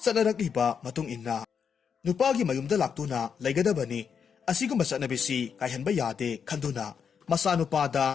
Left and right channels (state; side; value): quieter; right; 6.8 dB